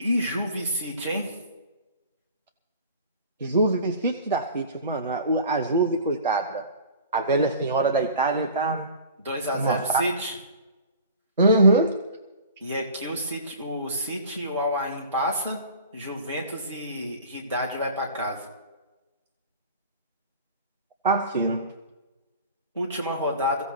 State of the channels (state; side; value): inverted; both; correlation -0.42